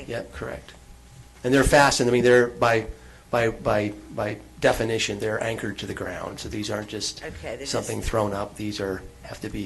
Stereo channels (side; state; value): both; identical; correlation 1.00